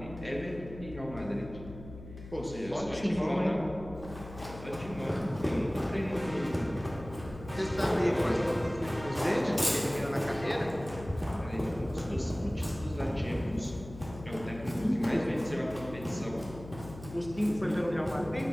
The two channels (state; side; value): noise; left; hum, 14 dB below the sound